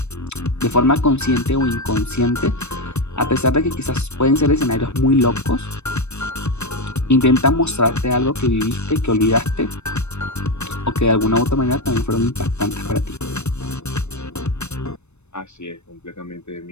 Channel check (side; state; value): right; late; 0.81 ms